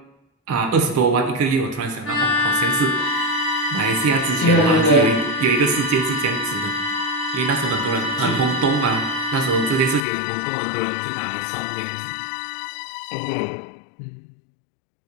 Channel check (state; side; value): drops out; right; at 10.1 s